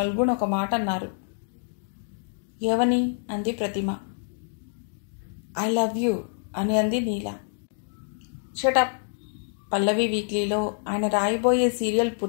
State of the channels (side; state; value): right; silent; digital silence